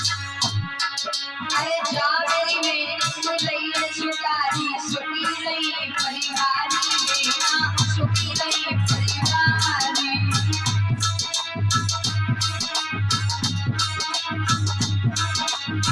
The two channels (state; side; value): identical; both; correlation 1.00